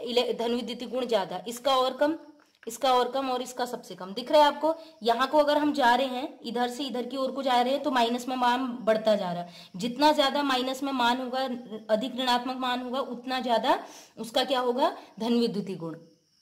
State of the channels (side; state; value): both; identical; correlation 1.00